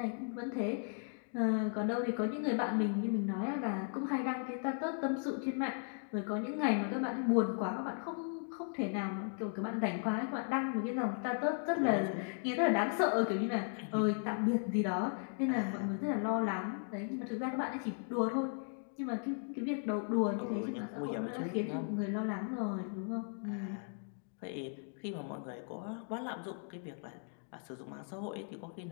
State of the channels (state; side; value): silent; right; 53 dB below the other